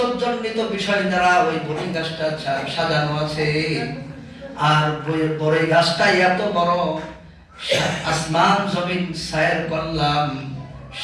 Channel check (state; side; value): identical; both; correlation 1.00